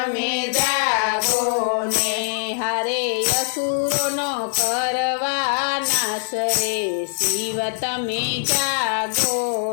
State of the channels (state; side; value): silent; right; digital silence